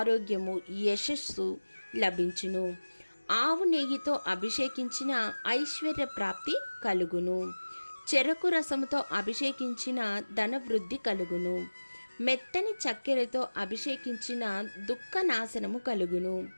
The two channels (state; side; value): inverted; both; correlation -1.00